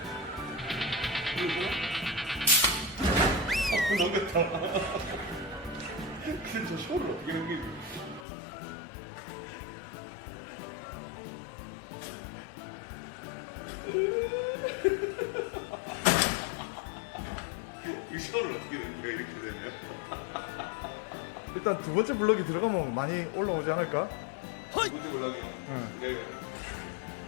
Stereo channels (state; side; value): drops out; right; at 8.2 s